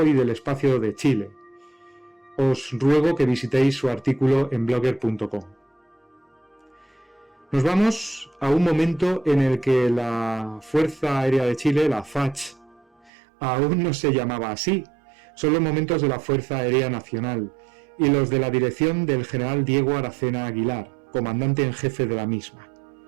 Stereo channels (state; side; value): drops out; left; at 13.1 s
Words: y del Espacio de Chile. Os ruego que visitéis su artículo en blogger.com. Nos vamos a un momento en el que la Fuerza Aérea de Chile, la FACH, aún no se llamaba así. Son los momentos de la Fuerza Aérea Nacional y los de la dirección del general Diego Aracena Aguilar, comandante en jefe de la misma.